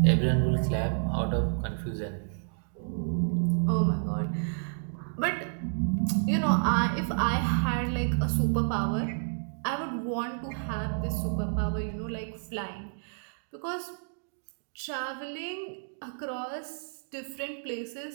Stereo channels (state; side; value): silent; left; digital silence